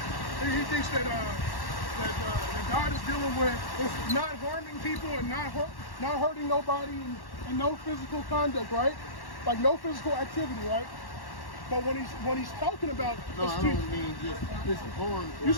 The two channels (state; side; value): late; right; 1.1 ms